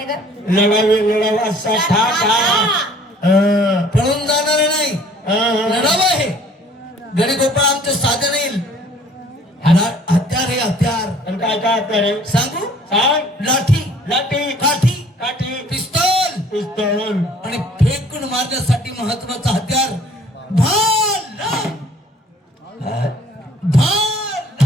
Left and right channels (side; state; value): both; normal; correlation 0.55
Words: का लढाऊ असा ठा ठा पळून जाणार नाही लढाऊ आहे गडी गोपाळ आमचं साधे नाही हत्यार हे हत्यार आणि काय काय रे सांगू सांग लाठी लाठी काठी काठी पिस्तॉल पिस्तूल आणि फेकून मारण्यासाठी महत्वाचं हत्यार भाला